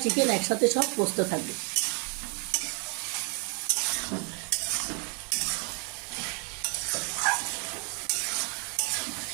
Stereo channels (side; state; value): left; quieter; 36.9 dB